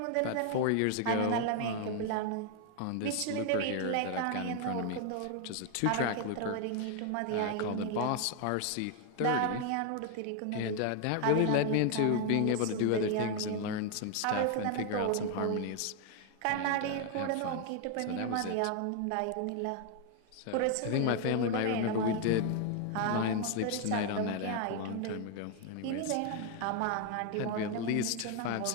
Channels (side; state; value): both; different; correlation 0.00